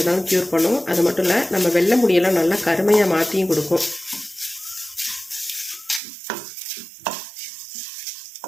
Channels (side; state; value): left; drops out; at 6.0 s